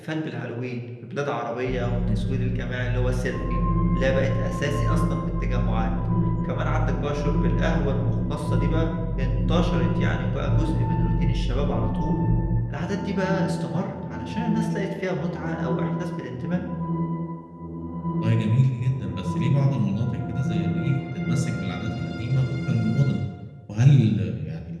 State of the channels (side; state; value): both; identical; correlation 1.00